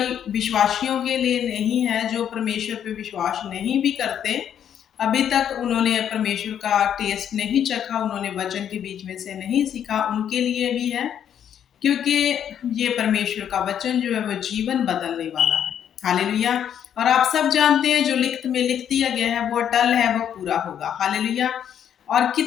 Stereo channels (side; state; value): right; quieter; 9.3 dB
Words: विश्वासियों के लिए नहीं है। जो परमेश्वर पे विश्वास नहीं भी करते, अभी तक उन्होंने परमेश्वर का टेस्ट नहीं चखा, उन्होंने वचन के बीच में से नहीं सीखा, उनके लिए भी है। क्योंकि ये परमेश्वर का वचन जो है वो जीवन बदलने वाला है। हालेलुया। और आप सब जानते हैं जो लिखत में लिख दिया गया है वो अटल है, वो पूरा होगा। हालेलुया। और